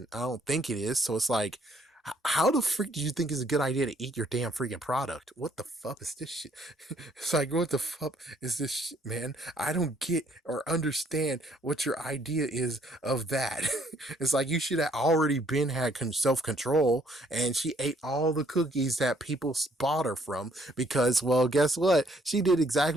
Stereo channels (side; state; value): both; normal; correlation 0.66